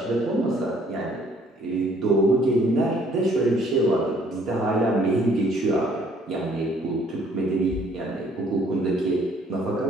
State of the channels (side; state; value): both; normal; correlation 0.61